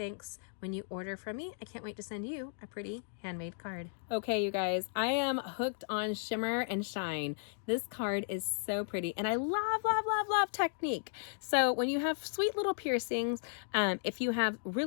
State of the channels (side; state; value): right; silent; digital silence